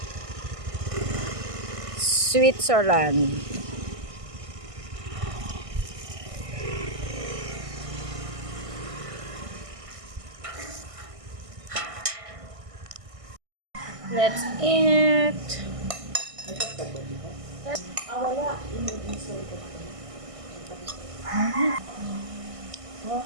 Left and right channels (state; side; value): late; left; 1.6 ms